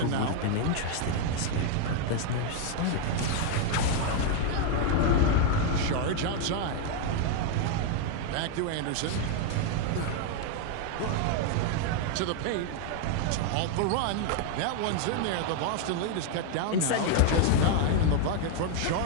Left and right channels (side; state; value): both; different; correlation 0.01